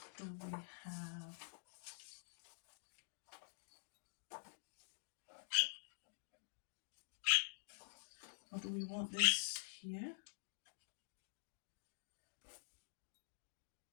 do we have? Or do we want this here?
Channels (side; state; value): right; silent; digital silence